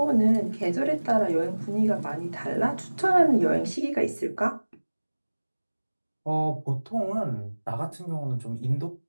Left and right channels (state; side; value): inverted; both; correlation -1.00